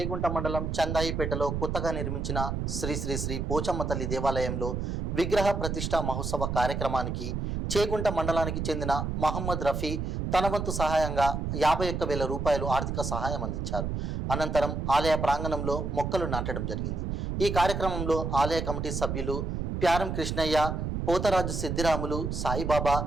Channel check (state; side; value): noise; right; rumble, 2 dB below the sound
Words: మండలం చందాయిపేటలో కొత్తగా నిర్మించిన శ్రీ శ్రీ శ్రీ పోచమ్మ తల్లి దేవాలయంలో విగ్రహ ప్రతిష్ఠ మహోత్సవ కార్యక్రమానికి చేగుంట మండలానికి చెందిన మహమ్మద్ రఫీ తన వంతు సహాయంగా 51,000 రూపాయలు ఆర్థిక సహాయం అందించారు. అనంతరం ఆలయ ప్రాంగణంలో మొక్కలు నాటడం జరిగింది. ఈ కార్యక్రమంలో ఆలయ కమిటీ సభ్యులు ప్యారం కృష్ణయ్య, పోతరాజు సిద్ధిరాములు, సాయిబాబా,